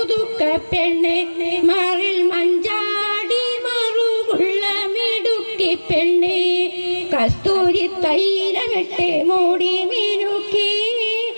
പെണ്ണെ മാറിൽ മഞ്ചാടി മറുകുള്ള മിടുക്കി പെണ്ണെ കസ്തൂരി തൈലമിട്ട് മൂടി മിനുക്കി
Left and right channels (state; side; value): inverted; both; correlation -1.00